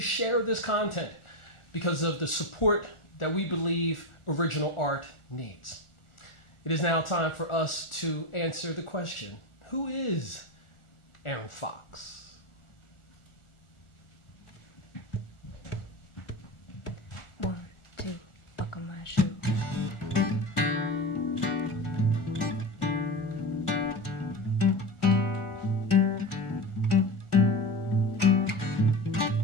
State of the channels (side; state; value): right; late; 1.4 ms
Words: this content because of the support that we believe original art needs. It is now time for us to answer the question, who is Erin Fox? One, two, buckle my shoe.